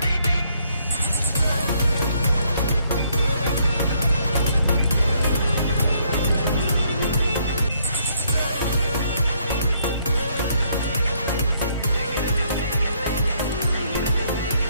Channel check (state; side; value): inverted; both; correlation -0.69